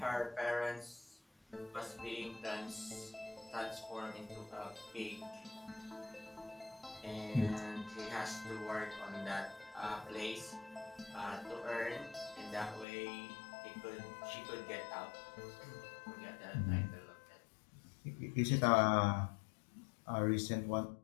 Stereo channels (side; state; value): right; drops out; at 12.9 s